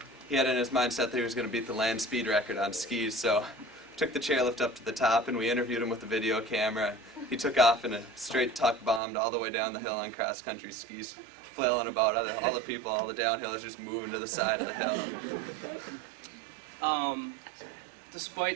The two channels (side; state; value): left; drops out; at 9.0 s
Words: he had in his mindset that he was going to beat the land speed record on skis, so took the chairlift up to the top, and we interviewed him with the video camera. He took off in a straight tuck, bombed all the way down the hill on cross-country skis, flailing about. All the people, all the downhillers just moving to the side of the hill.